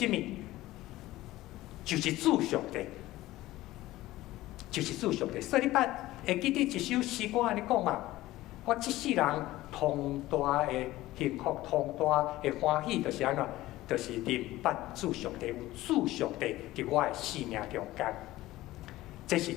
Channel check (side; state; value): right; quieter; 16.8 dB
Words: 物？就是主上帝。就是主上帝，所以你捌会记得一首诗歌安尼讲嘛？我这世人同大的幸福，同大的欢喜，就是安怎？就是认捌主上帝，有主上帝伫我的生命中间，这是